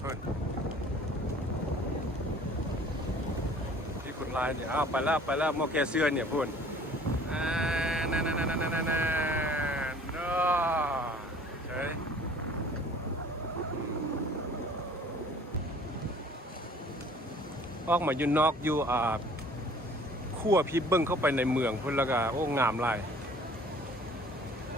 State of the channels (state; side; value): normal; both; correlation 0.51